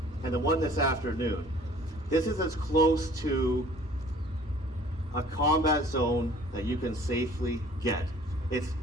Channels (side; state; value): both; normal; correlation 0.51